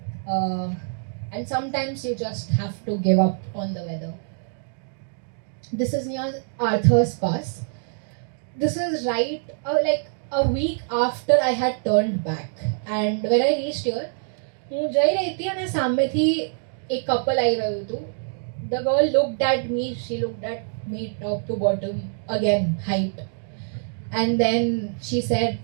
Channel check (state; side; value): silent; left; digital silence